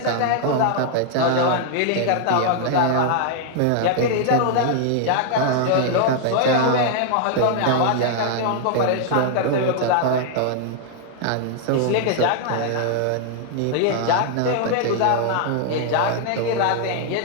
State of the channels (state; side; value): different; both; correlation 0.00